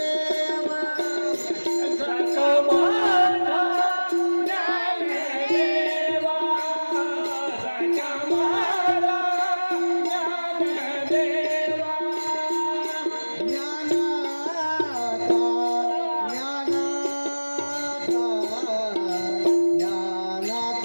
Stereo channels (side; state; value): both; inverted; correlation -1.00